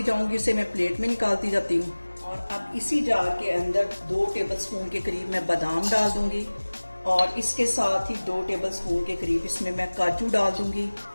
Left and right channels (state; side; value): inverted; both; correlation -1.00